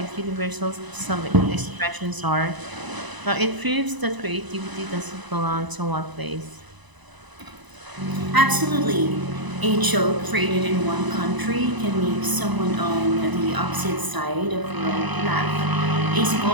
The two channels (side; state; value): left; late; 1.0 ms